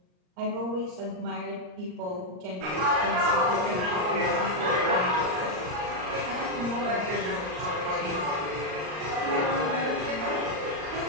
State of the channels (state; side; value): late; left; 39 ms